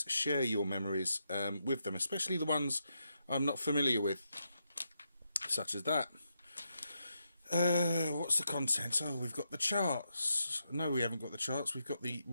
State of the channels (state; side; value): inverted; both; correlation -0.83